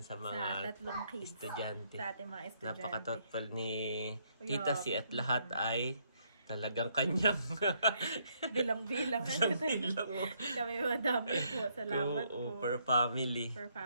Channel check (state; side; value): inverted; both; correlation -0.72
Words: sa mga 3 kids. estudyante. Sa ating mga estudyante. Napaka-thoughtful ni Tita Si at lahat ay talagang kanyang Bilang-bilang. bilang Kami madami po. Salamat po. per family. Per